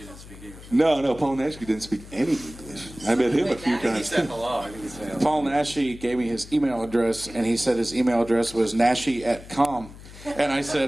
speak English. No, Paul Nash didn't speak any English. I met him a few times. He said hello. I think he said hello. Paul Nashi gave me his email address, and he said his email address was nashi@com. And I said,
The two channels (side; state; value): left; noise; hum, 17 dB below the sound